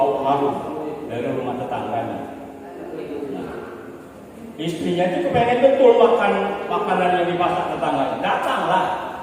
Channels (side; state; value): both; identical; correlation 1.00